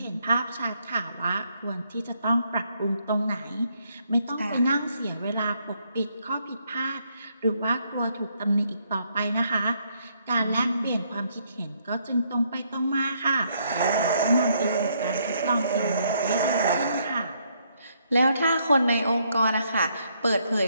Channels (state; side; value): inverted; both; correlation -0.72